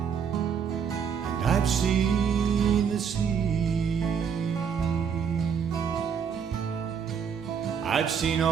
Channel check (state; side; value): quieter; left; 7.1 dB